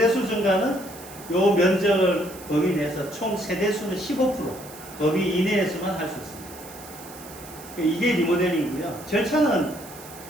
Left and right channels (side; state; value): right; noise; hiss, 17 dB below the sound